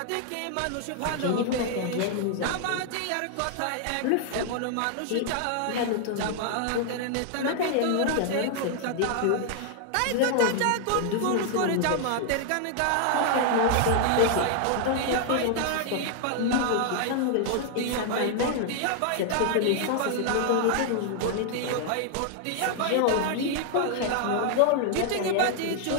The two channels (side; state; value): both; different; correlation 0.00